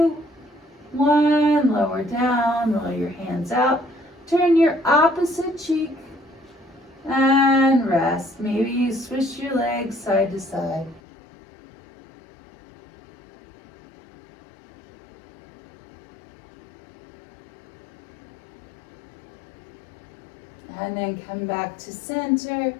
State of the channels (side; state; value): right; drops out; at 11.0 s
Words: 1, lower down, roll your hands out. Turn your opposite cheek and rest. Maybe you swish your legs side to side. And then come back to center.